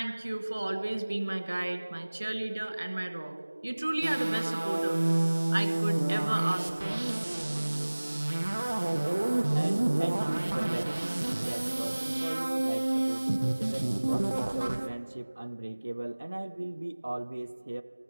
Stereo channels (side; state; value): both; inverted; correlation -1.00